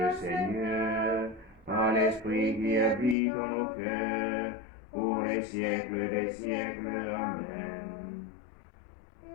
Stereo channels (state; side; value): drops out; right; at 3.2 s